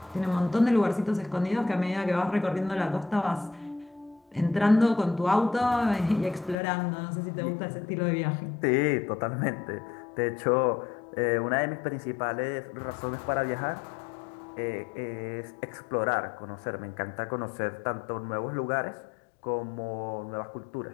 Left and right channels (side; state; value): right; drops out; at 6.6 s